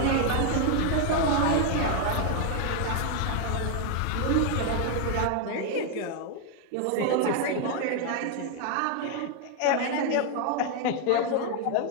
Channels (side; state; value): both; different; correlation 0.00